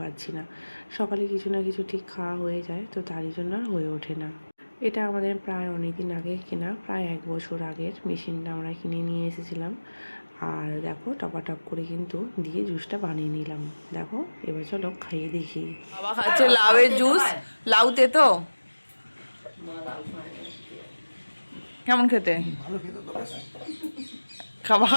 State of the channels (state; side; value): inverted; both; correlation -1.00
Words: পারছি না। সকালে কিছু না কিছু ঠিক খাওয়া হয়ে যায়, তো তারই জন্য আর হয়ে ওঠে না। এটা আমাদের প্রায় অনেক দিন আগে কেনা, প্রায় 1 বছর আগের মেশিনটা আমরা কিনে নিয়ে এসেছিলাম। আর দেখো টপাটপ করে কিন্তু দিয়ে জুসটা বানিয়ে নিলাম। দেখো এবার চলো খাইয়ে দেখি। বাবা খাচ্ছে লাউয়ের জুস। লাউতে তো কেমন খেতে?